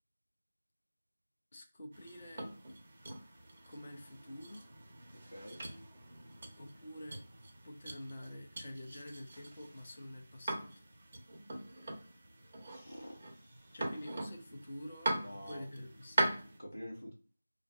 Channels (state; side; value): inverted; both; correlation -0.91